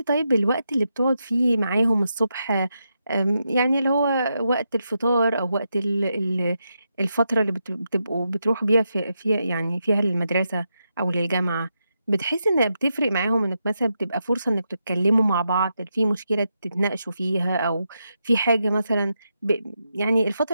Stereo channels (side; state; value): both; inverted; correlation -0.85